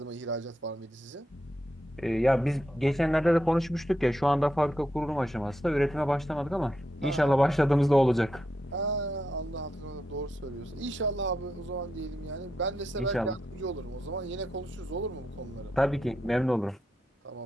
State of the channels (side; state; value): both; normal; correlation 0.84